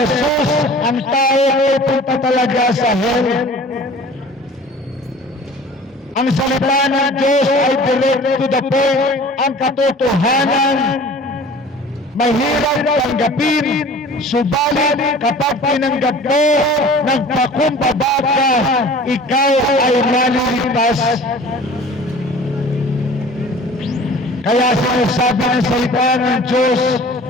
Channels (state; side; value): normal; both; correlation 0.44